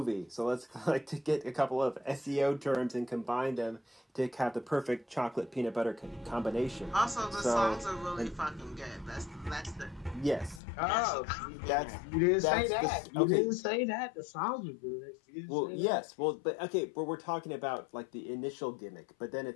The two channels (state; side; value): drops out; right; at 10.6 s